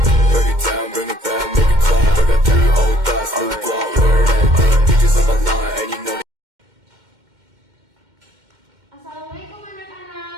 Break it down, bring it back, make it clap. I got 3 old thoughts, new block, where that thing. Bitches on my line, and you know. Assalamualaikum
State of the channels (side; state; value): left; late; 2.1 ms